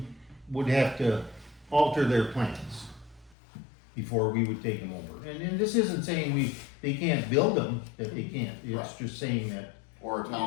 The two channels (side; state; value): right; drops out; at 3.4 s